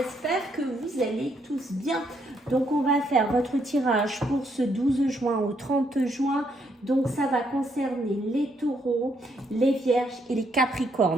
que vous allez tous bien. Donc on va faire votre tirage pour ce 12 juin au 30 juin. Donc ça va concerner les taureaux, les vierges et les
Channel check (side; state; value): both; normal; correlation 0.74